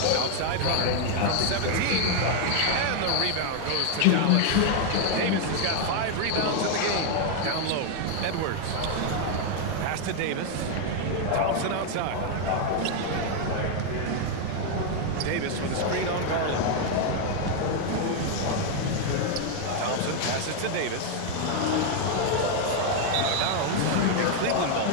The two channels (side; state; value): both; different; correlation 0.00